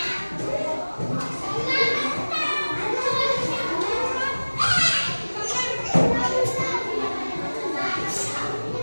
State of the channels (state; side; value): inverted; both; correlation -1.00